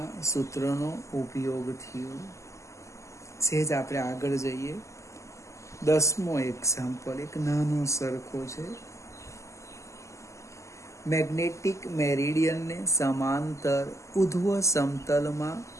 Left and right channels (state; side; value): late; right; 0.14 ms